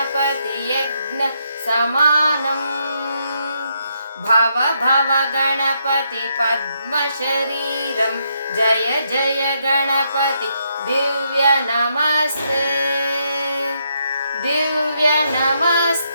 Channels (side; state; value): both; inverted; correlation -0.78